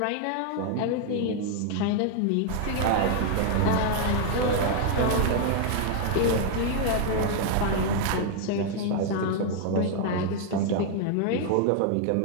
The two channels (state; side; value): different; both; correlation 0.00